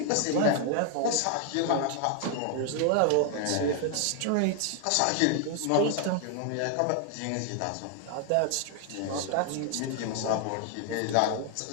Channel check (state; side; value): different; both; correlation 0.00